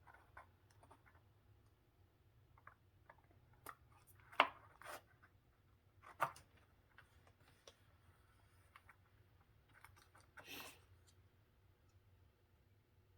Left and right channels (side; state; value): both; identical; correlation 1.00